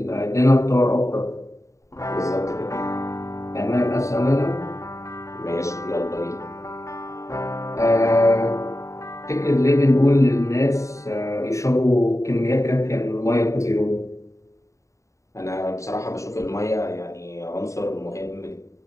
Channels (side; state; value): right; late; 0.15 ms